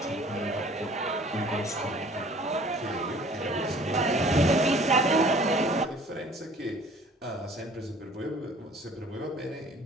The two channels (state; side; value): normal; both; correlation 0.51